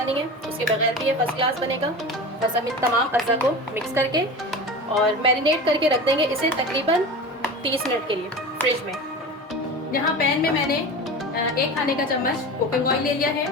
नहीं है, उसके बगैर भी ये फर्स्ट क्लास बनेगा। बस हम इन तमाम अज़ा को मिक्स करके और मैरिनेट करके रख देंगे इसे तकरीबन 30 मिनट के लिए फ्रिज में। यहाँ पैन में मैंने 1 खाने का चम्मच कुकिंग ऑयल ले लिया है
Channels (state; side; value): normal; both; correlation 0.31